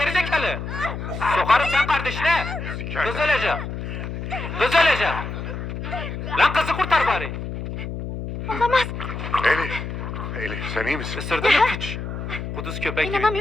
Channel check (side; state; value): left; noise; hum, 6 dB below the sound